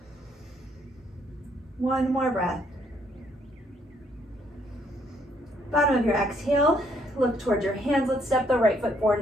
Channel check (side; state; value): both; normal; correlation 0.69